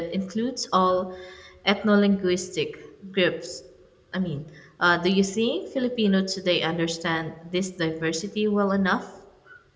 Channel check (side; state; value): both; identical; correlation 1.00